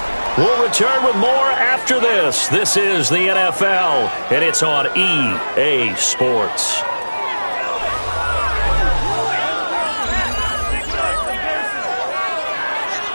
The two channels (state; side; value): inverted; both; correlation -1.00